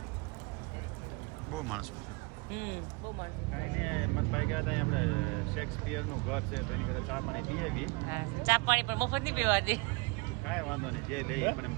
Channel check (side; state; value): left; quieter; 27.5 dB